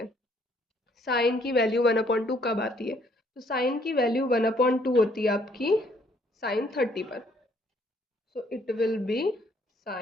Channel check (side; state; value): both; normal; correlation 0.65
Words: साइन की वैल्यू 1 अपॉन 2 कब आती है? तो साइन की वैल्यू 1 अपॉन 2 होती है आपकी साइन 30 पर. So it will be